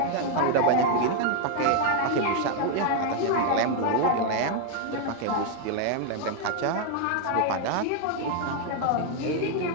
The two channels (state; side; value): different; both; correlation 0.01